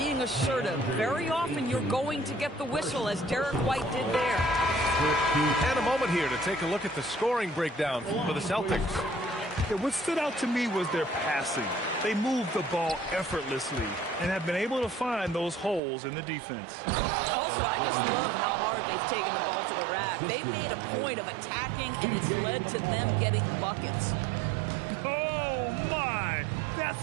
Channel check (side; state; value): left; drops out; at 15.8 s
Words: assertive, very often you're going to get the whistle, as Derek White did there. And a moment here to take a look at the scoring breakdown for the Celtics. Yeah, what stood out to me was their passing. They moved the ball effortlessly and have been able to find those holes in the defense. Also, I just love how hard they've taken the ball to the rack. They've made a point of attacking, and it's led to them getting buckets. Oh, my! That's